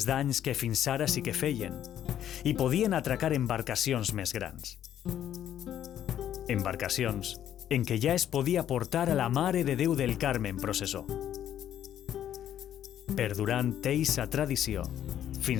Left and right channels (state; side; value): quieter; right; 10.7 dB